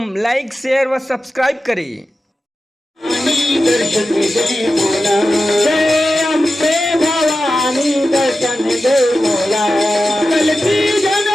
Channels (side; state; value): both; normal; correlation 0.93